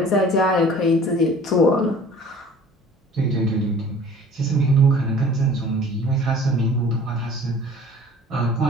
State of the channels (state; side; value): normal; both; correlation 0.47